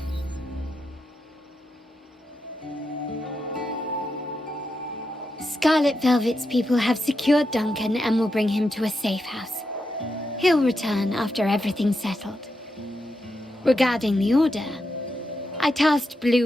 Scarlet Velvet's people have secured Duncan and will bring him to a safe house. He'll return after everything's settled. Regarding the Order, I tasked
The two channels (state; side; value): normal; both; correlation 0.85